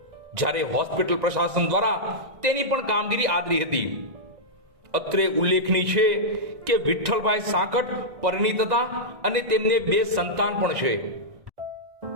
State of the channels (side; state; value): left; late; 1.9 ms